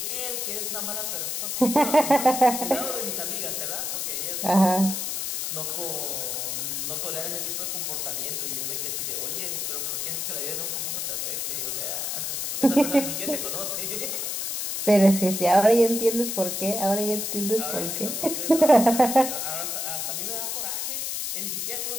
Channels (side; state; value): left; noise; hiss, 2 dB below the sound